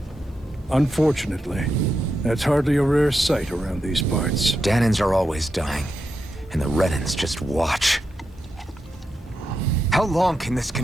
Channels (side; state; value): both; normal; correlation 0.86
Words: Unfortunately, that's hardly a rare sight around these parts. Danans are always dying, and the Renans just watch. How long can this